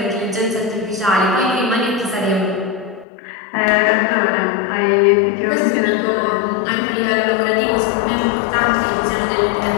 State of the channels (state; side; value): drops out; right; at 3.1 s